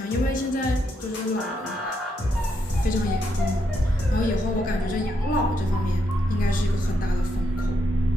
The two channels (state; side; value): normal; both; correlation 0.79